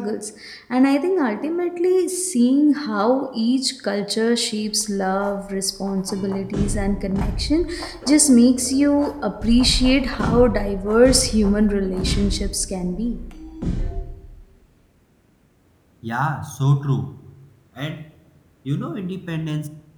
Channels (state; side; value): identical; both; correlation 1.00